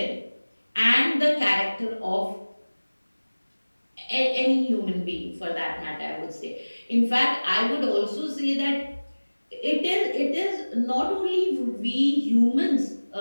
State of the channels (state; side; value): inverted; both; correlation -1.00